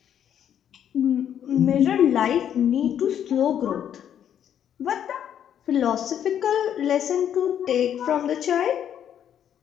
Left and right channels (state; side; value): quieter; right; 9.5 dB